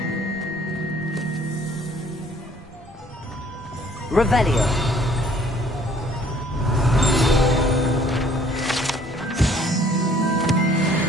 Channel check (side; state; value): both; normal; correlation 0.58